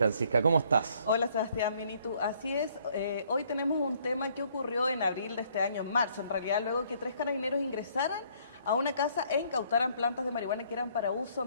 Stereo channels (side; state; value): both; inverted; correlation -0.64